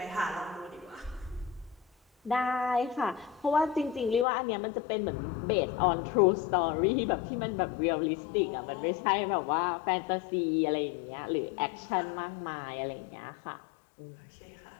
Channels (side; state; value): right; drops out; at 4.2 s